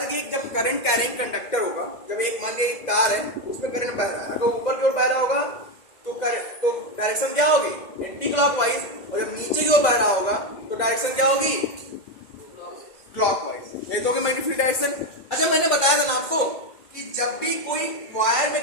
कि जब करंट कैरिंग कंडक्टर होगा, जब एक मान लिया एक तार है उसमें करंट बह रहा है, अगर ऊपर की ओर बह रहा होगा तो डायरेक्शन क्या होगी, एंटी क्लॉकवाइज, और जब नीचे की ओर बह रहा होगा तो डायरेक्शन क्या होगी, क्लॉकवाइज। ये तो होगी मैग्नेटिक फील्ड डायरेक्शन। अच्छा, मैंने बताया था ना आपको कि जब भी कोई वायर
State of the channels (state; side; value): late; right; 2.1 ms